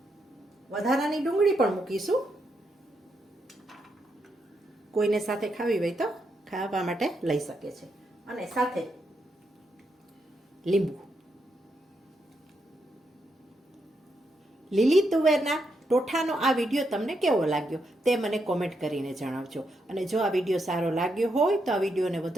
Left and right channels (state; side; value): normal; both; correlation 0.81